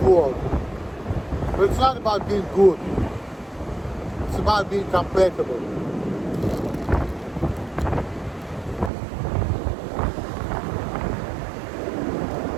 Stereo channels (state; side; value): drops out; left; at 8.9 s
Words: world. But it's not about being good. It's about being compatible.